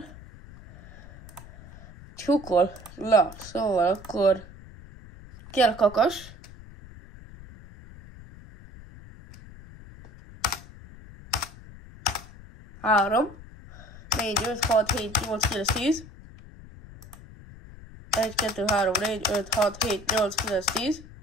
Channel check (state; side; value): noise; left; rumble, 18 dB below the sound